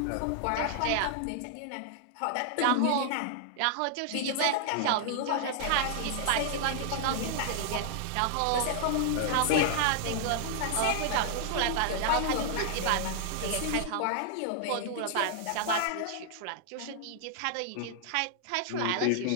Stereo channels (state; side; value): different; both; correlation -0.01